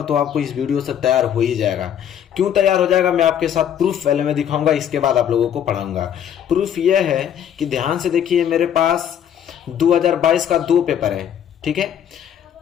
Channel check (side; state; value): right; quieter; 9.4 dB